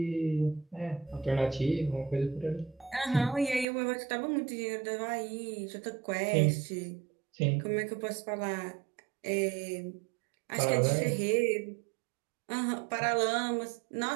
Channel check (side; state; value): left; drops out; at 3.7 s